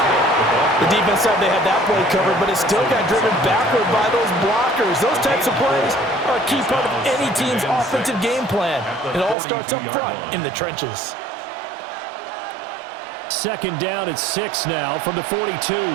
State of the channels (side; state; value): left; drops out; at 9.3 s